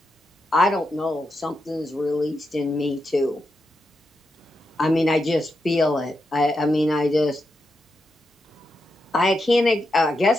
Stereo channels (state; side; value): normal; both; correlation 0.85